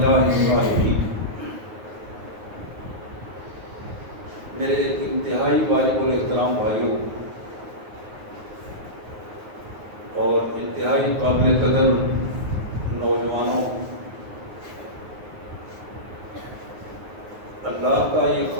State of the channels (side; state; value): left; late; 9.4 ms